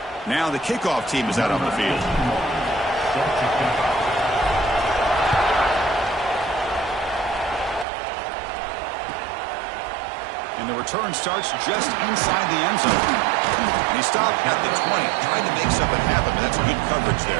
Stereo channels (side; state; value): left; drops out; at 7.9 s